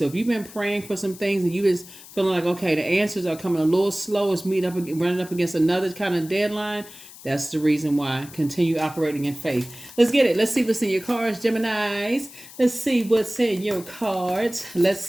if you've been praying for some things and you just feeling like, okay, the answers are coming a little slow, it's running up against another kind of deadline, that's the reason why. Continue operating in faith. Let's get it. Let's see what's in your cards, Geminis. Let's see what's in your cards.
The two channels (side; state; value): left; noise; hiss, 18 dB below the sound